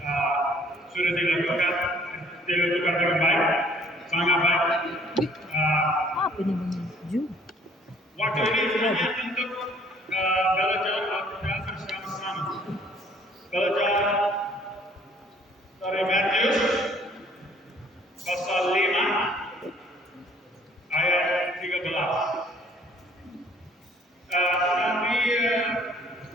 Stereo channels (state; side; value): normal; both; correlation 0.58